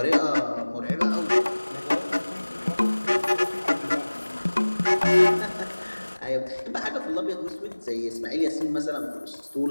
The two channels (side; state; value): both; inverted; correlation -1.00